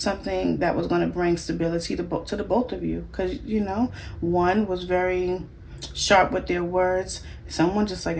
that was going to bring stability to the both of you, because you know, one was very sharp with their words. Someone just like,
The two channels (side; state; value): both; identical; correlation 1.00